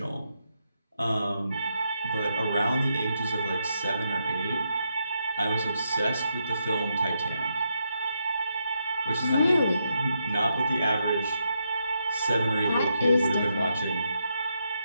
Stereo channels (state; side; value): inverted; both; correlation -0.81